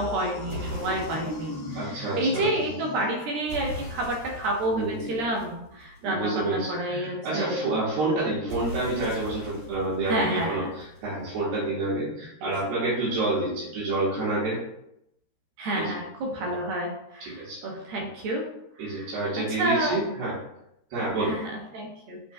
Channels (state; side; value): late; left; 13 ms